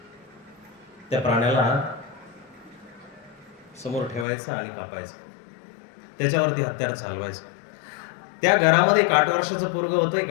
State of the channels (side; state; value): right; drops out; at 4.2 s